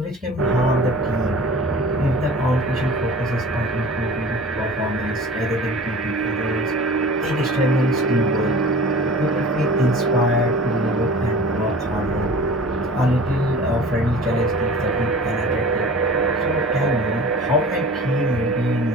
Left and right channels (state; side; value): normal; both; correlation 0.41